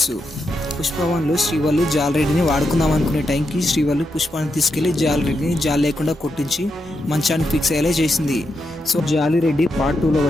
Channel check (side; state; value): both; normal; correlation 0.84